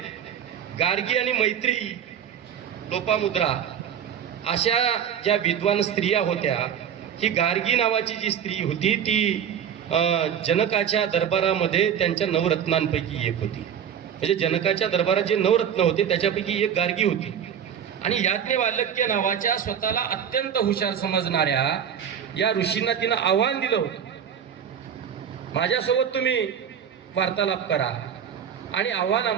गार्गी आणि मैत्री, लोपामुद्रा अशा ज्या विद्वान स्त्रिया होत्या, ही गार्गी नावाची जी स्त्री होती ती जनकाच्या दरबारामध्ये त्यांच्या नवरत्नांपैकी एक होती. म्हणजे जनकाच्या दरबारात जे नवरत्न होते त्याच्यापैकी एक गार्गी होती. आणि याज्ञवल्क्य नावाच्या स्वतःला अत्यंत हुशार समजणाऱ्या या ऋषींना तिनं आव्हान दिलं होतं, माझ्यासोबत तुम्ही वार्तालाप करा. आणि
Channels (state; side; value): quieter; left; 8.5 dB